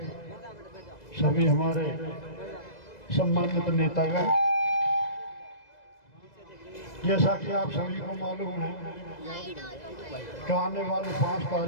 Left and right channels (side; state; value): right; late; 2.0 ms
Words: सभी हमारे सम्मानित नेतागण, जैसा कि आप सभी को मालूम है कि आने वाली 5